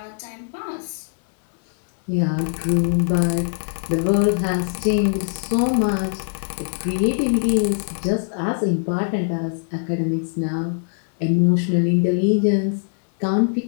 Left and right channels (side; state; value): right; silent; digital silence